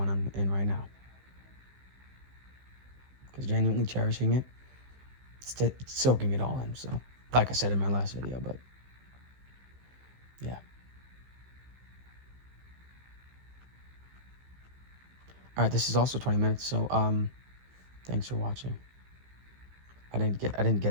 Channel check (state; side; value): late; left; 15 ms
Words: I'm in right now. Because genuinely cherishing it, it's soaking it all in. So, like I said in my last video, but yeah. All right, this is also 20 minutes, so thanks for watching. I